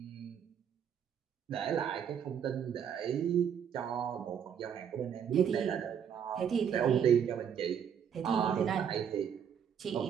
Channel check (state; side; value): quieter; left; 8.1 dB